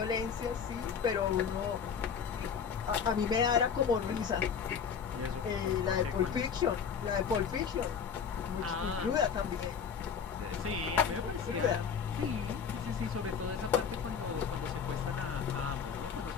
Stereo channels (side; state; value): right; quieter; 6.8 dB